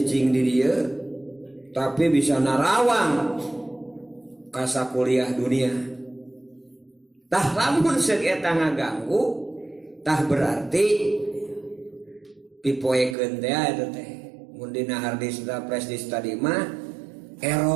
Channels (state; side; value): drops out; left; at 13.2 s